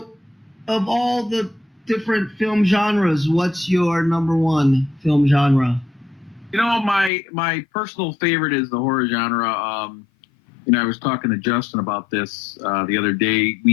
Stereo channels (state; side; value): drops out; right; at 7.1 s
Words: of all the different film genres, what's your number one film genre? My personal favorite is the horror genre. I was talking to Justin about this the other day.